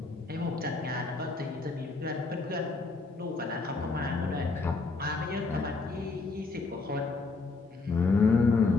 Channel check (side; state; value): right; quieter; 3.9 dB